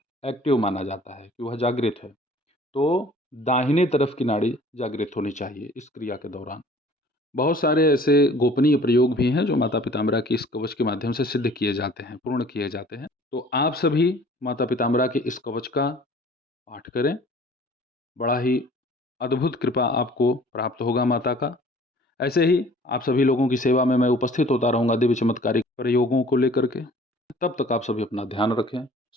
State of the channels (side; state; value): both; normal; correlation 0.51